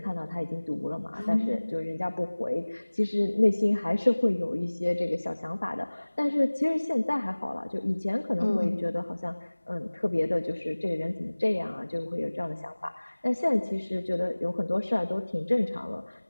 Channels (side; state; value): both; inverted; correlation -1.00